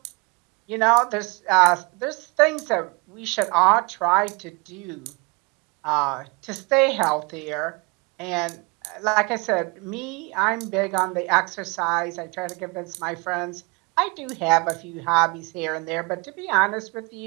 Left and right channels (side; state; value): left; quieter; 29.0 dB